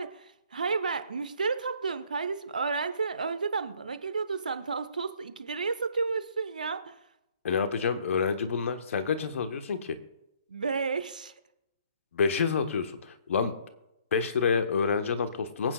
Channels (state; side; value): inverted; both; correlation -0.62